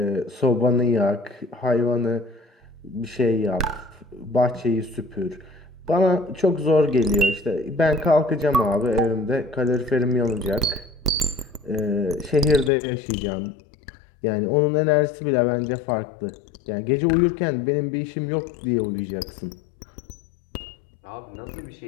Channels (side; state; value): right; drops out; at 12.7 s